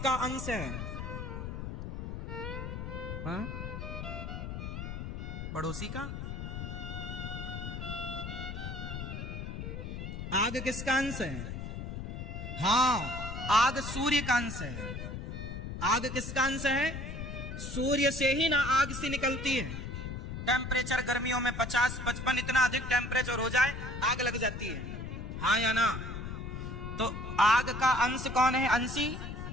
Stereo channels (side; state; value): left; noise; rumble, 6 dB below the sound